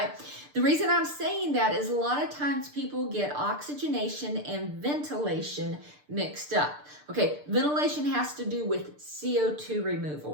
The reason I'm saying that is a lot of times people get oxygenation and ventilation mixed up. Okay, ventilation has to do with CO2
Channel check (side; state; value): left; late; 6.7 ms